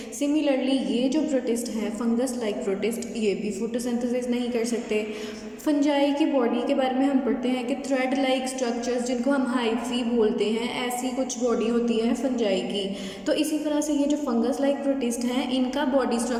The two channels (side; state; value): both; identical; correlation 1.00